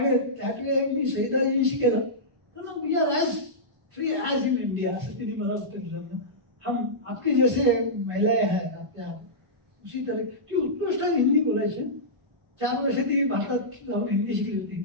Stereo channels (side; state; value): left; late; 1.4 ms